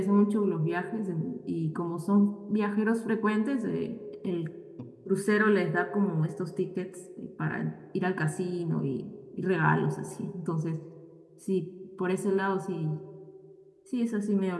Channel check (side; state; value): both; identical; correlation 1.00